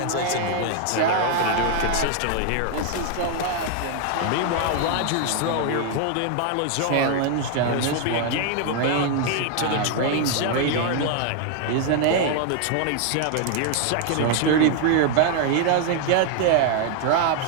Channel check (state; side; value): different; both; correlation 0.00